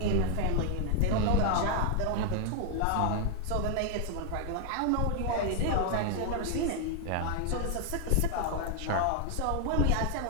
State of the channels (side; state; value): both; different; correlation 0.00